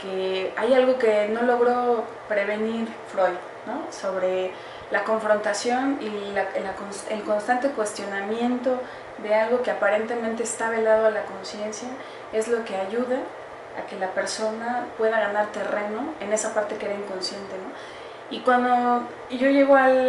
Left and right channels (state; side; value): identical; both; correlation 1.00